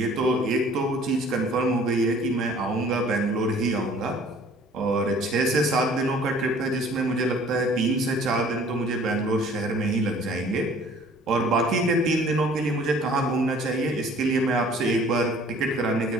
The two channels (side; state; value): both; normal; correlation 0.53